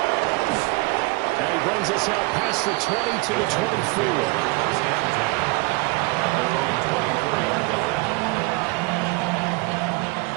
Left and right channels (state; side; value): quieter; left; 25.5 dB